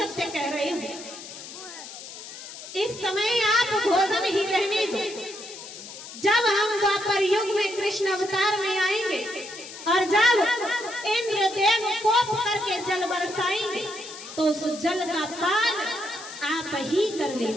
कह रहे हो, इस समय आप भोजन ही रहने दो। जब हम द्वापर युग में कृष्ण अवतार में आएंगे और जब इंद्रदेव कोप करके जल बरसाएंगे तो उस जल का पान आप ही कर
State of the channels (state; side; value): noise; left; hiss, 13 dB below the sound